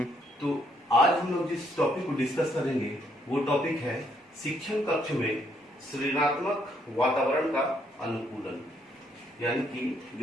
तो आज हम लोग जिस टॉपिक को डिस्कस करेंगे वो टॉपिक है शिक्षण कक्ष में सृजनात्मक वातावरण का अनुकूलन। यानी कि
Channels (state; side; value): normal; both; correlation 0.71